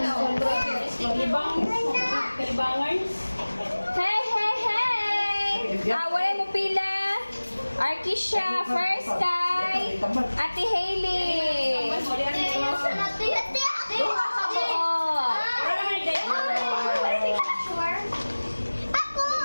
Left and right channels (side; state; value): both; inverted; correlation -1.00